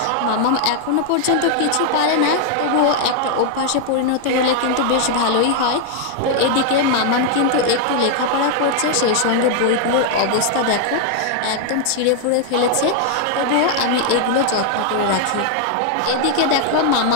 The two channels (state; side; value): different; both; correlation 0.00